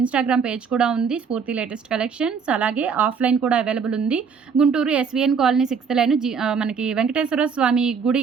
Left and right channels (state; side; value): quieter; left; 6.0 dB